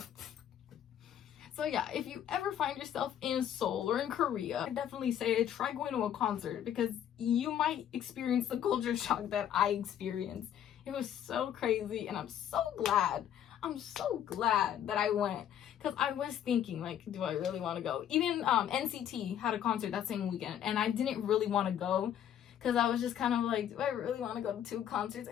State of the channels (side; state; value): right; quieter; 10.1 dB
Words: So yeah, if you ever find yourself in Seoul or in Korea, I definitely say try going to a concert because you might experience the culture shock that I experienced. It was so crazy, and I'm so glad that I went, because I was thinking like, do I really want to go? Even NCT had a concert that same weekend, and I didn't really want to go because I was just kind of like, do I really want to go to 2 concerts